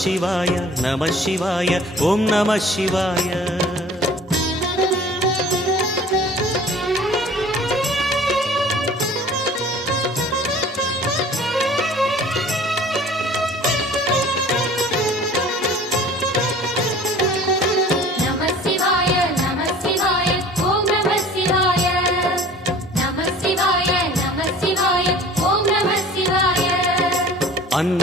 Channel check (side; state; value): both; normal; correlation 0.47